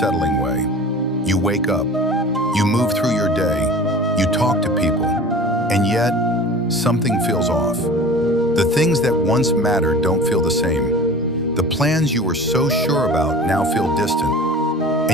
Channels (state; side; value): normal; both; correlation 0.39